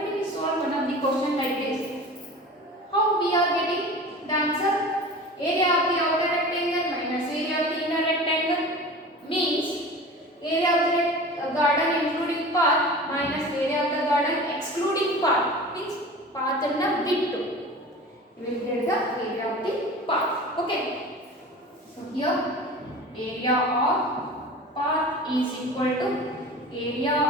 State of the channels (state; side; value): normal; both; correlation 0.37